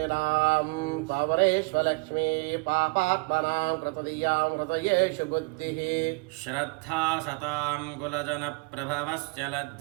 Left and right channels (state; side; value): quieter; left; 29.7 dB